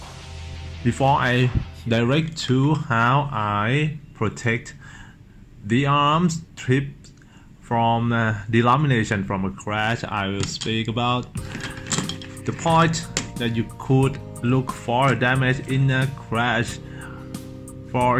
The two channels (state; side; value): identical; both; correlation 1.00